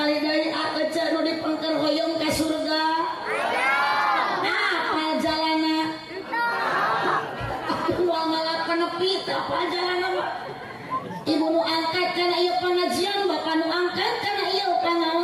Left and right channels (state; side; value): identical; both; correlation 1.00